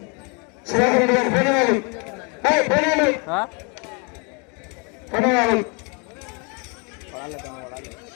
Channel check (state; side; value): quieter; right; 33.5 dB